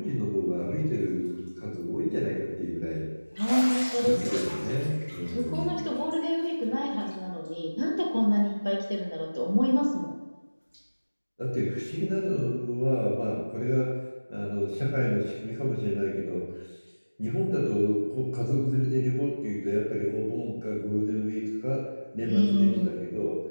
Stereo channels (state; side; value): inverted; both; correlation -1.00